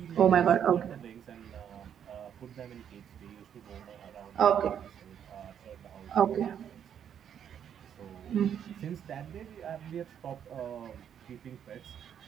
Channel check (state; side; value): quieter; left; 8.9 dB